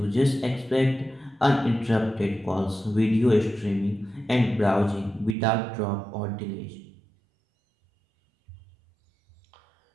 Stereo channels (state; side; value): drops out; left; at 5.4 s